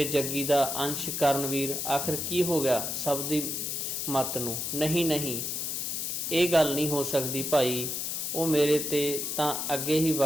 ਜੱਗੀ ਦਾ ਅੰਸ਼ ਕਰਨਵੀਰ, ਆਖਿਰ ਕੀ ਹੋ ਗਿਆ ਸਭ ਦੀ ਮੱਤ ਨੂੰ? ਨਹੀਂ, ਇਹ ਗੱਲ ਨਹੀਂ ਹੋ ਸਕਦੀ ਭਾਈ। ਉਹ ਮੇਰੇ ਤੇ ਤਾਂ ਅੱਗੇ ਹੀ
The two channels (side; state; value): left; noise; hiss, 2 dB below the sound